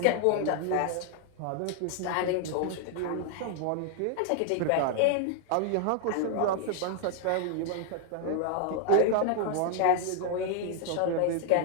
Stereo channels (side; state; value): both; different; correlation 0.00